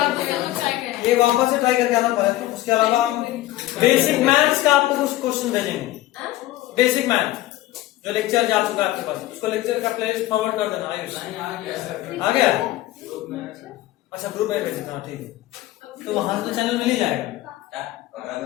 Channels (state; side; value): quieter; right; 15.9 dB